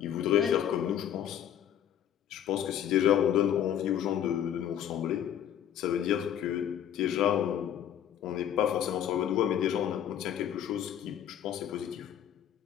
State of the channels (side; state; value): right; quieter; 10.1 dB